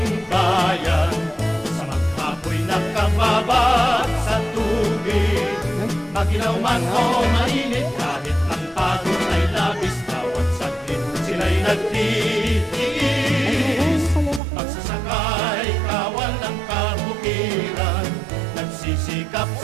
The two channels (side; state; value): left; drops out; at 14.4 s